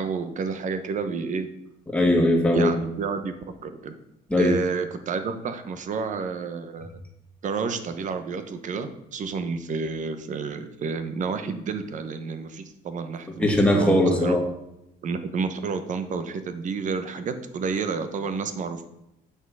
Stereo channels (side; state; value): both; normal; correlation 0.63